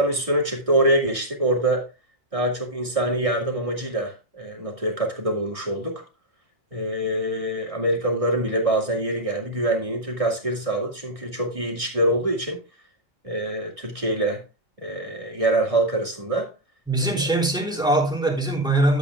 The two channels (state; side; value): normal; both; correlation -0.04